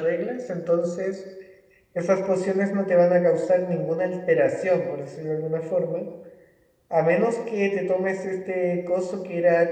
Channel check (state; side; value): identical; both; correlation 1.00